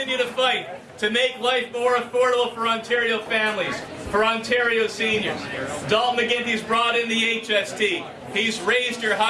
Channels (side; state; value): both; identical; correlation 1.00